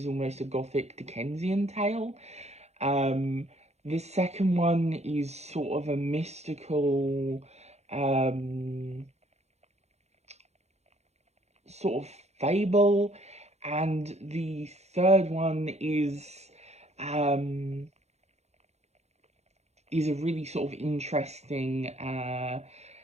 almost a gothic Dickensian tale. Um, the second one is sort of a mystical, um, sort of fable, and the third one um, is a really sort of interesting,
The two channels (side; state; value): left; late; 0.32 ms